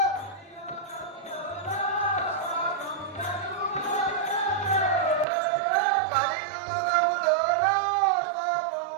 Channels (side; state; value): left; drops out; at 5.2 s